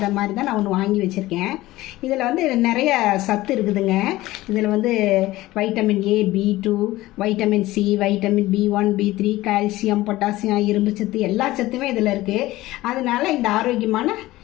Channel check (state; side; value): quieter; right; 17.4 dB